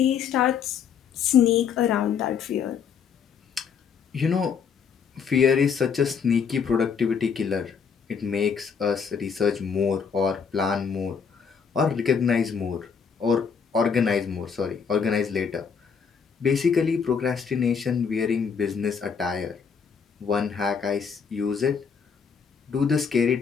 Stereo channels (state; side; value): quieter; right; 6.4 dB